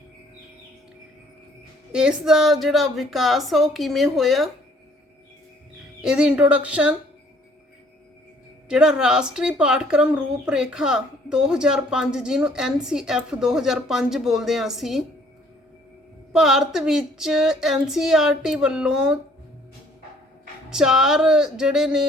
ਇਸ ਦਾ ਜਿਹੜਾ ਵਿਕਾਸ ਆ ਉਹ ਕਿਵੇਂ ਹੋਇਆ, ਇਹਦੀ ਇੰਟਰੋਡਕਸ਼ਨ, ਜਿਹੜਾ ਰਾਸ਼ਟਰੀ ਪਾਠਕ੍ਰਮ ਰੂਪਰੇਖਾ 2005 ਜਿਹਨੂੰ NCF 2005 ਬੋਲਦੇ ਹਾਂ ਅਸੀਂ, ਭਾਰਤ ਵਿੱਚ NCERT ਵੱਲੋਂ 4 ਜਿਹੜੇ ਨੇ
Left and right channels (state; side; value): normal; both; correlation 0.60